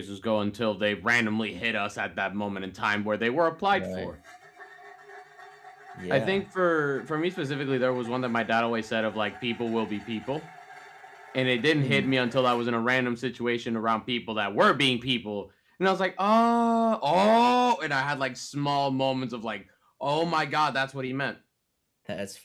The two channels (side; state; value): both; identical; correlation 1.00